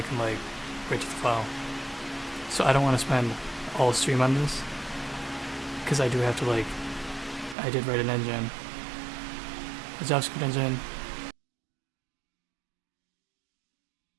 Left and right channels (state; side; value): drops out; left; at 7.6 s